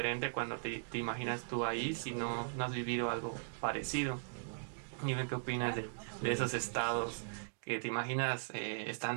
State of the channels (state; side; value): silent; left; digital silence